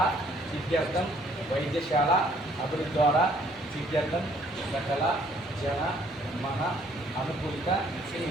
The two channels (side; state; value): both; normal; correlation 0.62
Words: सिद्ध्यर्थं वैद्यशाला अभिवृद्ध्वारा सिद्ध्यर्थं सकल जन मन अनुकूलित